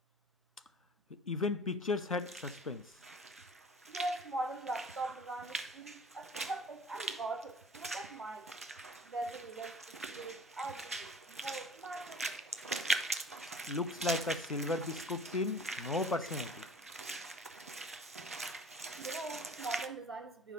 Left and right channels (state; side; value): normal; both; correlation 0.47